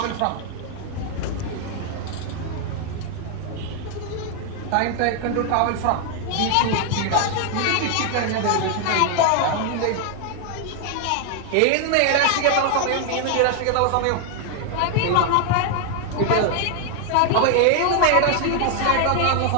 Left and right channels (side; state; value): both; different; correlation 0.00